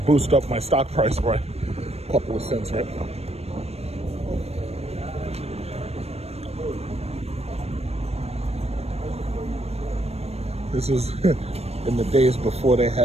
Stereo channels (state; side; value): late; left; 0.30 ms